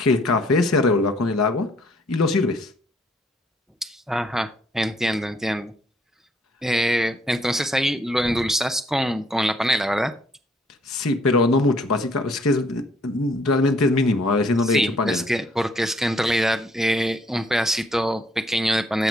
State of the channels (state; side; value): normal; both; correlation 0.64